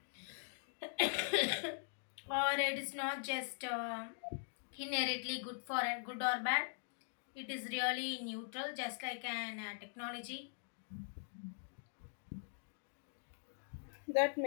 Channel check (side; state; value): right; silent; digital silence